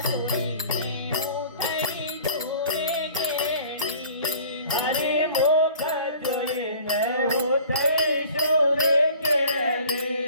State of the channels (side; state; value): both; inverted; correlation -0.48